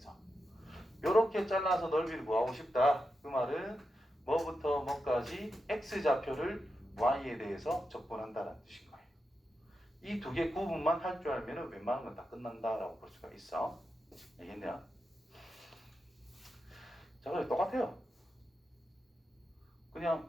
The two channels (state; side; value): normal; both; correlation 0.88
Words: 요렇게 잘라서 넓이를 구하고 싶다. 그 말은 뭐부터 뭐까지 x좌표를 y에 대해서 적분한다는 뜻인 거예요. 이 두 개 구분만 할 줄 알면 웬만한 건 다 끝난다라고 볼 수가 있어. 알겠냐? 자, 그래 똑같아요.